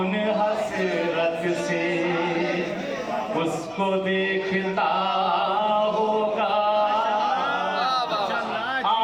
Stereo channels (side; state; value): right; noise; rumble, 29 dB below the sound